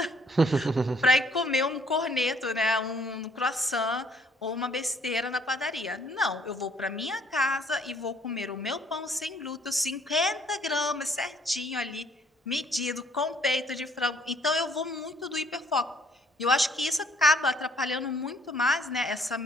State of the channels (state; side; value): normal; both; correlation 0.63